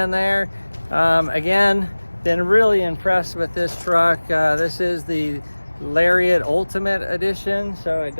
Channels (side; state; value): both; inverted; correlation -1.00